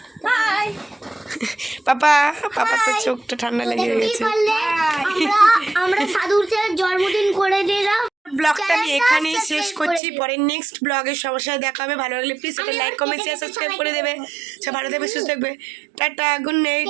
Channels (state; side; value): drops out; left; at 10.0 s